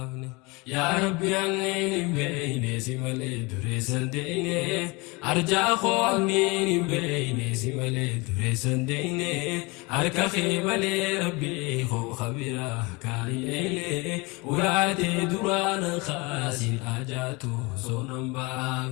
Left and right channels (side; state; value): right; quieter; 26.1 dB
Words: يا ربي أنين بين سمال دريسان ديني أرجع خو أنين بين سمال دريسان ديني أركا خيمال ربي خبيرا كايلي ولاتي دران خاسين آجاتو صونم